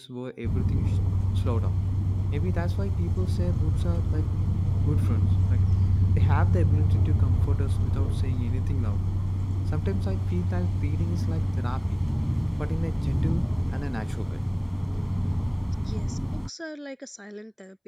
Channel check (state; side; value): identical; both; correlation 1.00